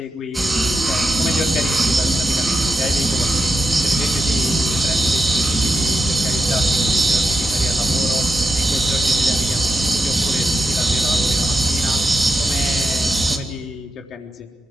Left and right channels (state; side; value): normal; both; correlation 0.87